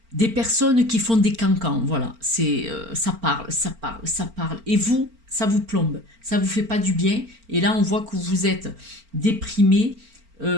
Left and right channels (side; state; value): left; late; 4.4 ms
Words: personnes qui font des cancans, voilà, ça parle, ça parle, ça parle, et vous, ça vous plombe, ça vous fait pas du bien, et là on voit que vous êtes déprimé,